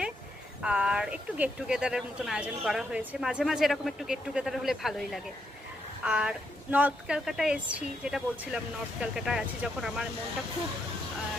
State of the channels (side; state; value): both; normal; correlation 0.79